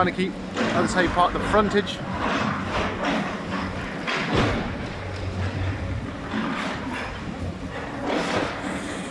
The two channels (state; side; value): identical; both; correlation 1.00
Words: to keep, as I say, part of the frontage.